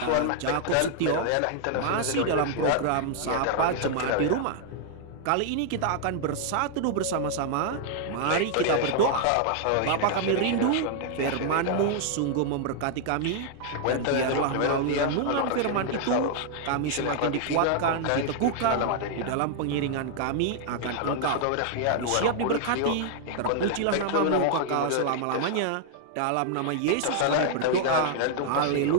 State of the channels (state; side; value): different; both; correlation 0.00